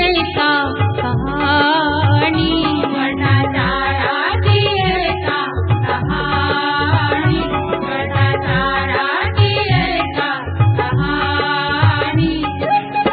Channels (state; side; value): identical; both; correlation 1.00